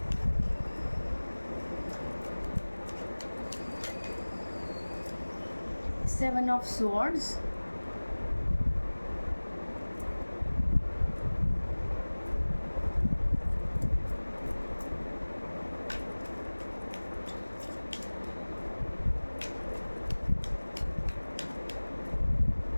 seven of swords,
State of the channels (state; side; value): inverted; both; correlation -1.00